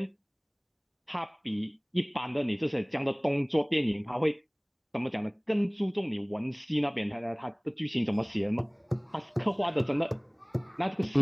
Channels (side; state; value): both; identical; correlation 1.00